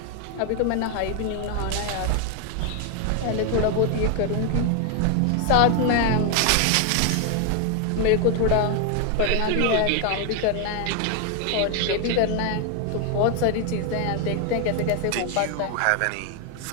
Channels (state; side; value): different; both; correlation 0.01